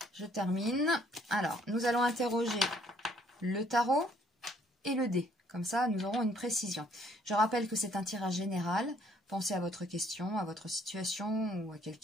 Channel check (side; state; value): both; normal; correlation 0.64